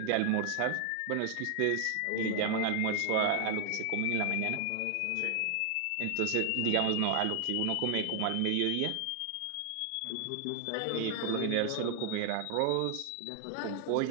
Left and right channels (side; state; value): both; different; correlation 0.00